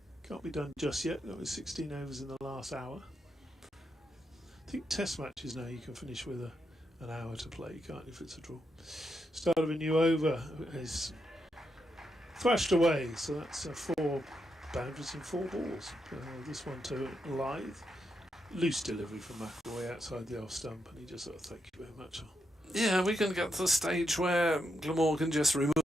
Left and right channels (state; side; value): normal; both; correlation 0.83